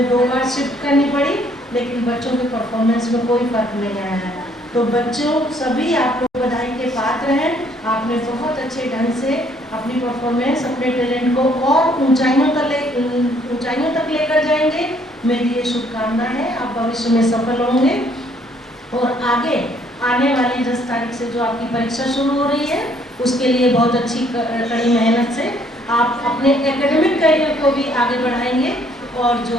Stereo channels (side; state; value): both; normal; correlation 0.64